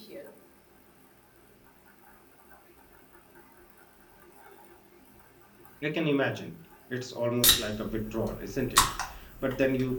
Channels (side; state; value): both; identical; correlation 1.00